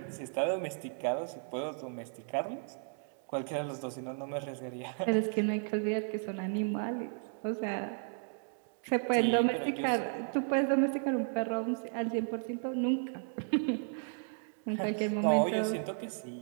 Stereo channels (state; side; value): silent; left; 55 dB below the other